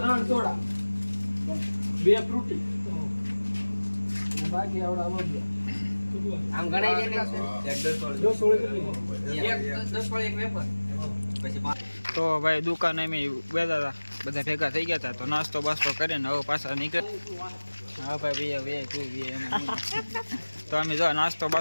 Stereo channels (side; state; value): both; inverted; correlation -1.00